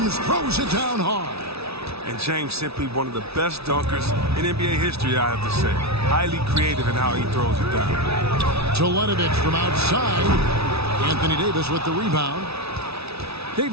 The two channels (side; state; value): left; late; 0.79 ms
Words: throws it down hard. And James simply one of the best dunkers in NBA history, I have to say. Highly creative in how he throws it down. Teletovic from outside. Anthony Davis with the rebound.